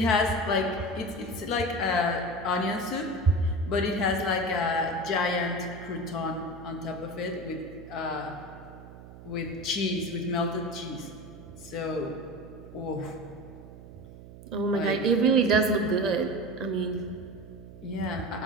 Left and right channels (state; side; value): noise; right; hum, 16 dB below the sound